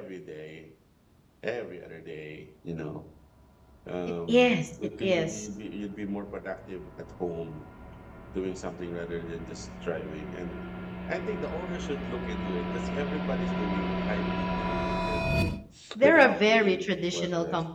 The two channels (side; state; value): both; identical; correlation 1.00